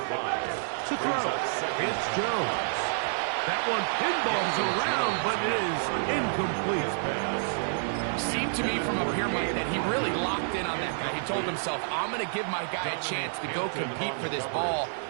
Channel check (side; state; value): left; silent; 55 dB below the other